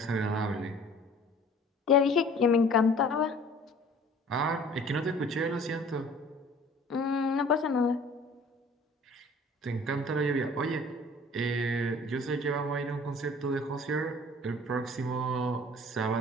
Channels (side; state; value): both; normal; correlation 0.50